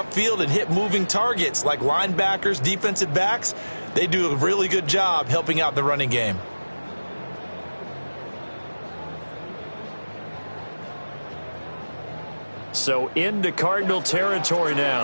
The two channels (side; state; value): both; inverted; correlation -1.00